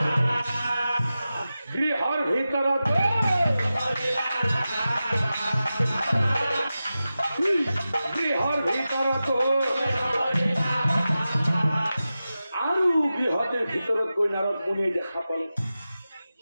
গৃহর ভিতৰত আৰু গৃহতে ভিতৰত গৈ নাৰদ মুনিয়ে দেখা পালে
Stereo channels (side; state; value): both; inverted; correlation -0.94